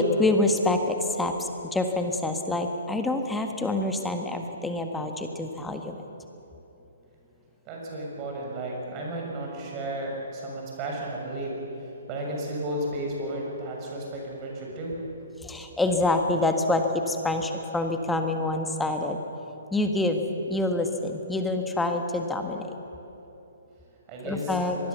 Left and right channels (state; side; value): normal; both; correlation 0.15